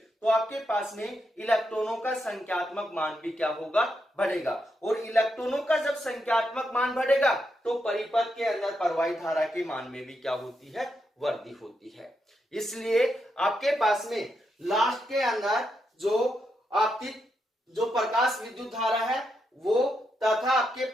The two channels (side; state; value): both; normal; correlation 0.83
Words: तो आपके पास में इलेक्ट्रॉनों का संख्यात्मक मान भी क्या होगा, बढ़ेगा। और इलेक्ट्रॉनों का जब संख्यात्मक मान बढ़ेगा तो परिपथ के अंदर प्रवाहित धारा के मान में भी क्या होती है, वृद्धि होती है। इसलिए आपके पास में लास्ट के अंदर जो आपतित जो प्रकाश विद्युत धारा है वो तथा आपके